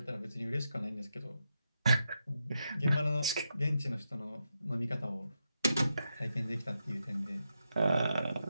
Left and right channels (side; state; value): both; inverted; correlation -0.85